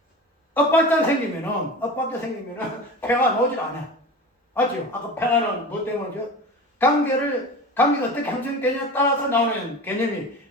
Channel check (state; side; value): normal; both; correlation 0.33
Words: 엇박자 생기면은 평화가 나오질 않아. 맞죠? 아까 평화는 뭐 때문이죠? 관계가 어떻게 형성되냐에 따라서 나오는 개념이